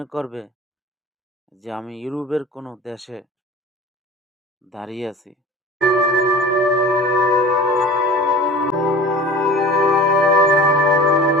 করবে যে আমি ইউরোপের কোনো দেশে দাঁড়িয়ে আছি।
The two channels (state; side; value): normal; both; correlation 0.39